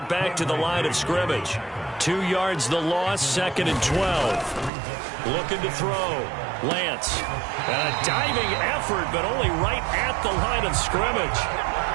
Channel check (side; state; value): left; drops out; at 4.7 s